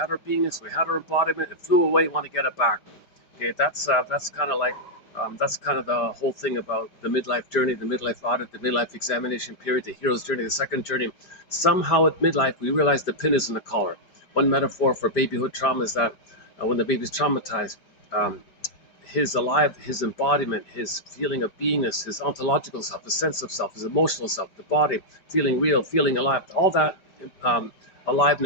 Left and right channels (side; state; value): right; late; 5.0 ms